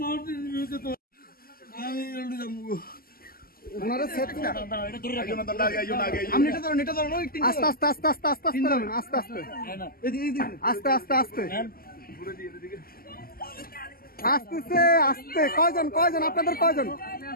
আস্তে আস্তে আস্তে আস্তে আস্তে আস্তে আস্তে আস্তে আস্তে আস্তে আসতেছে আস্তে। কয়জন কয়জন আপনাদের? কয়জন?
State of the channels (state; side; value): late; right; 0.43 ms